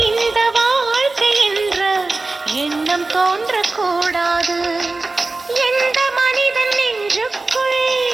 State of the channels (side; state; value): left; quieter; 3.4 dB